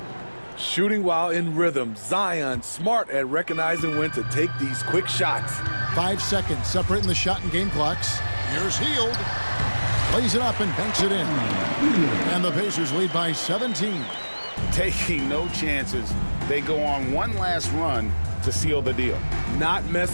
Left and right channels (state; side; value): inverted; both; correlation -1.00